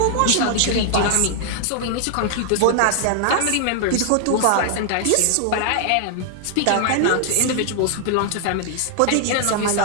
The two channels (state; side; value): different; both; correlation 0.00